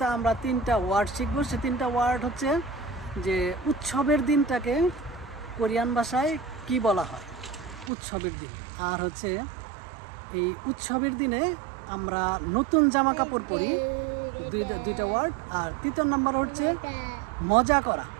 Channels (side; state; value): left; drops out; at 7.9 s